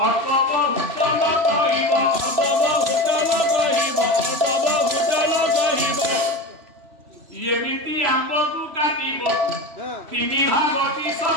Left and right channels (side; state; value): left; late; 3.0 ms